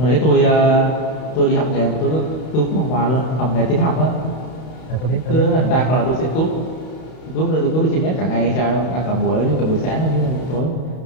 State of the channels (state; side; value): late; right; 32 ms